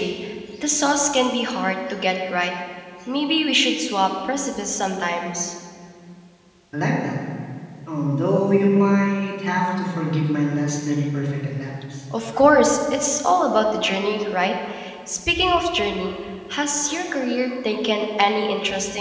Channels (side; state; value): both; identical; correlation 1.00